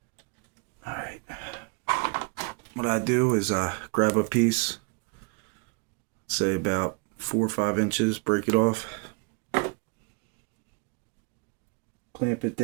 Alright. What I do is I grab a piece, say about 4 or 5 inches, break it off, clamp it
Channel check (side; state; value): left; quieter; 32.4 dB